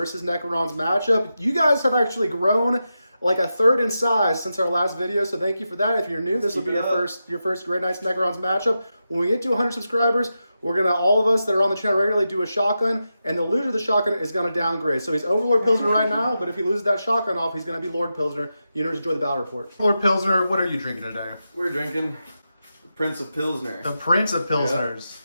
Necrons matchup. You guys have actually grown like a third in size since our last video, so thank you for that. If you're new, this will be your first Grey Knights Necrons matchup. When we get to 100 subscribers, we're gonna, all of us that are on the channel regularly, do a shotgun, and the loser of the shotgun is gonna downgrade. So he's Overlord Pilsner right now, but if he loses that shotgun off, he's gonna be Lord Pilsner. You know, enjoy the battle report. Lord Pilsner, what are you drinking today? We're drinking the Prince of Pilsner. The Prince of Pilsners.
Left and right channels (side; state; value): both; inverted; correlation -0.89